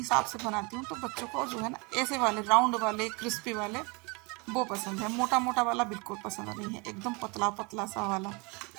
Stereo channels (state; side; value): quieter; left; 29.1 dB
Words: से बनाती हूँ, तो बच्चों को जो है ना ऐसे वाले राउंड वाले क्रिस्पी वाले वो पसंद है, मोटा मोटा वाला बिल्कुल पसंद नहीं है, एकदम पतला पतला सा वाला।